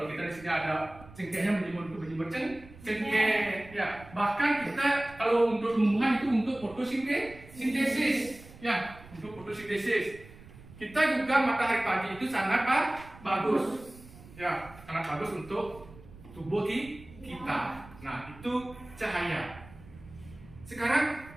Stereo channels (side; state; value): right; noise; rumble, 20 dB below the sound